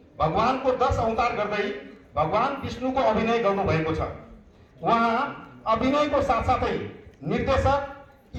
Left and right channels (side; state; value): both; identical; correlation 1.00